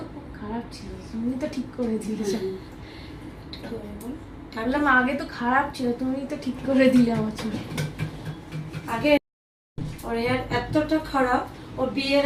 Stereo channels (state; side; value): identical; both; correlation 1.00